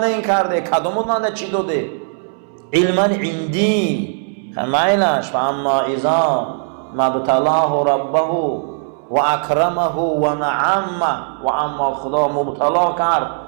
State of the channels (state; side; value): silent; left; 66 dB below the other